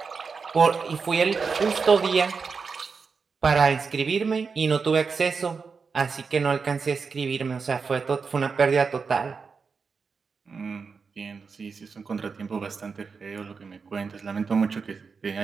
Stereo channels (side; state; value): left; quieter; 5.2 dB